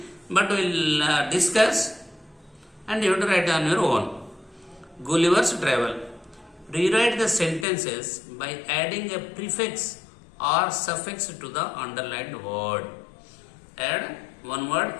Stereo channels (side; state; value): right; drops out; at 7.7 s